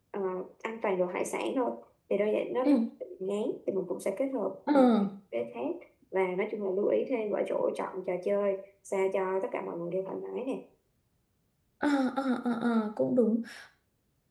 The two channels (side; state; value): both; identical; correlation 1.00